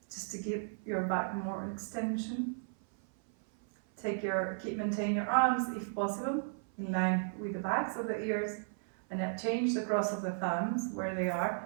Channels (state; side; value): silent; left; 55 dB below the other